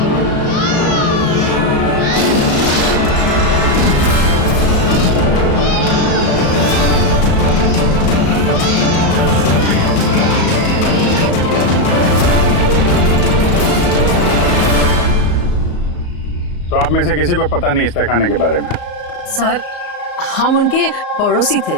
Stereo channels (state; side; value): late; right; 34 ms